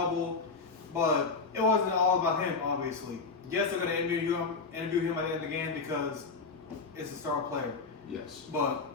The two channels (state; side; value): quieter; right; 4.4 dB